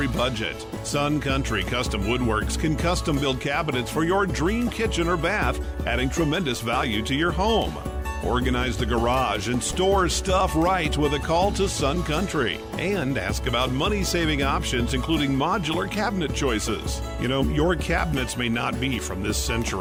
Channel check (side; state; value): both; identical; correlation 1.00